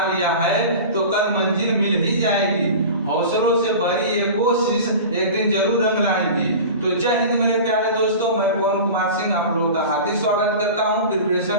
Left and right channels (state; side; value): inverted; both; correlation -0.34